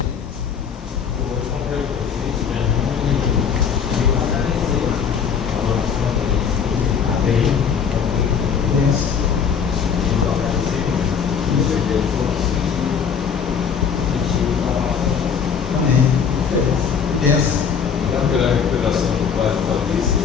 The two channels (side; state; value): right; quieter; 6.9 dB